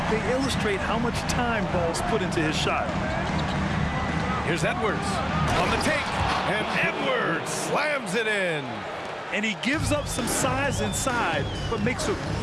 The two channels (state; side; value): identical; both; correlation 1.00